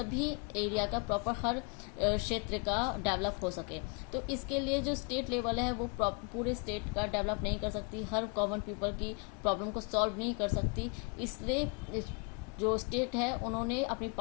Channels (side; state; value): right; quieter; 34.6 dB